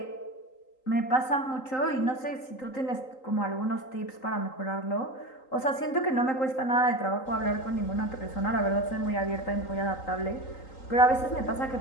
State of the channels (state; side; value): late; right; 3.8 ms